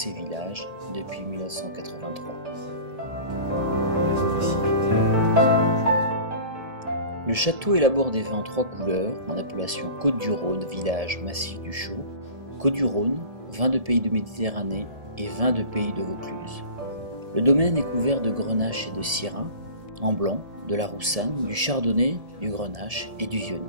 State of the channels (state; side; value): late; left; 1.7 ms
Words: Village depuis 1983. Le château élabore des vins en 3 couleurs en appellation Côtes-du-Rhône, village Massif du Chaux, Côtes-du-Rhône, vin de pays de Méditerranée et vin de pays de Vaucluse. Le domaine est couvert de grenache et de syrah, en blanc, de la roussanne, du chardonnay, du grenache et du